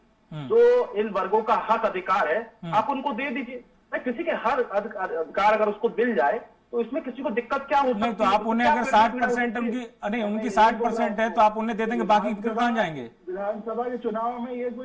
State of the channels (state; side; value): identical; both; correlation 1.00